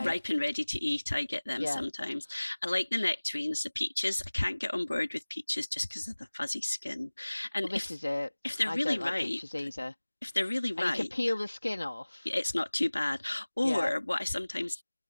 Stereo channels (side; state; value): both; inverted; correlation -1.00